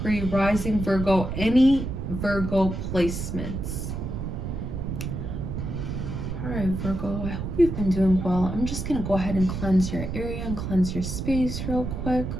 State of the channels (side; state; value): right; noise; rumble, 4 dB below the sound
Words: Rising Virgo, any Virgo placements. Alright, Virgo, I hope you've been doing well. I'm just going to go ahead and cleanse your area and cleanse your space real quick.